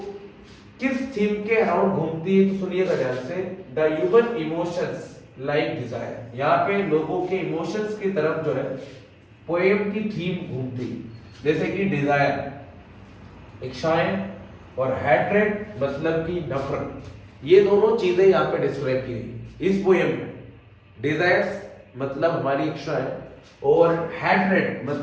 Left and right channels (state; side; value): identical; both; correlation 1.00